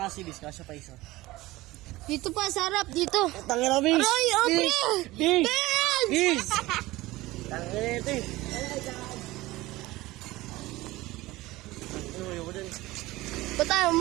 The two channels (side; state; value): left; quieter; 18.8 dB